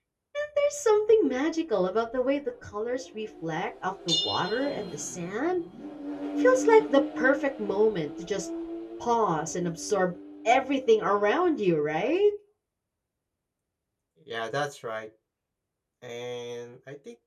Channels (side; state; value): both; identical; correlation 1.00